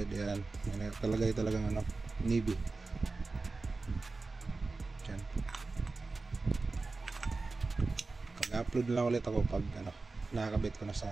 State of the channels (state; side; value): quieter; left; 3.7 dB